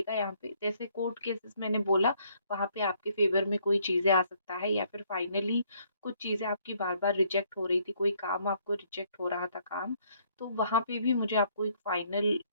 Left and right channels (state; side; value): inverted; both; correlation -0.67